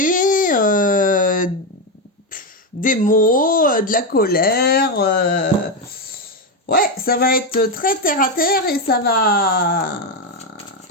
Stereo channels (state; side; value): normal; both; correlation 0.09